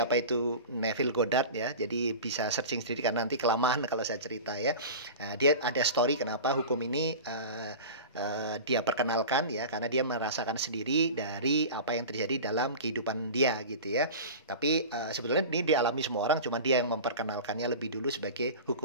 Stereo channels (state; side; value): inverted; both; correlation -0.33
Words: itu Neville Goddard ya. Jadi bisa searching sendiri karena nanti kelamaan kalau saya cerita ya. Dia ada story kenapa hukum ini dia perkenalkan ya, karena dia merasakan sendiri dari apa yang terjadi dalam kehidupan dia gitu ya. Tapi sebetulnya ini dialami semua orang, cuma dia yang memperkenalkannya lebih dulu sebagai